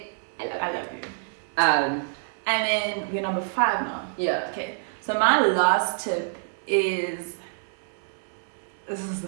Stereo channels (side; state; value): left; silent; 60 dB below the other